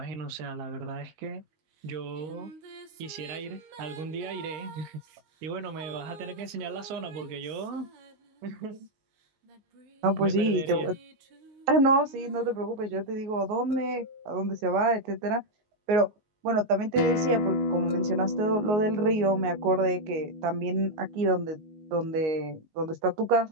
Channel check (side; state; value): left; late; 19 ms